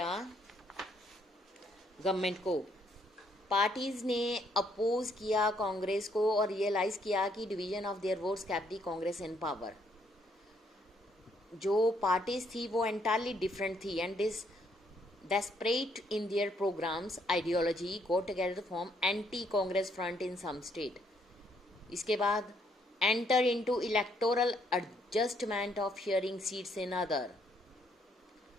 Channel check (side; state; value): both; normal; correlation 0.70